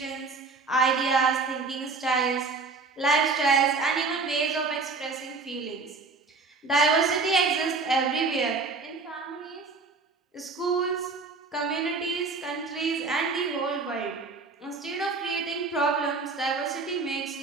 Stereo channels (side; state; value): left; quieter; 4.1 dB